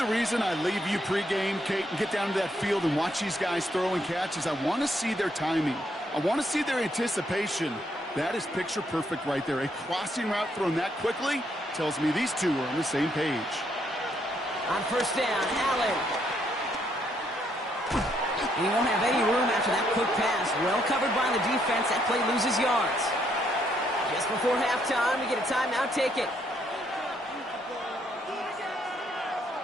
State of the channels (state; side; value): normal; both; correlation 0.73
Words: the reason I leave you pregame, Kate, and get down to that field and watch these guys throw and catch is I want to see their timing. I want to see their anticipation. That is picture perfect right there. A crossing route thrown that quickly tells me these two are on the same page. On 1st down, Allen. He won't have any room after that quick pass. Well covered by the defense. That play loses yards. Just before halftime, we get a timeout taken.